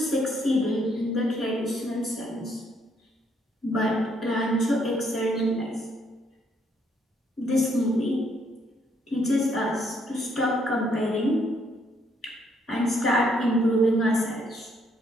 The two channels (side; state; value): both; normal; correlation 0.70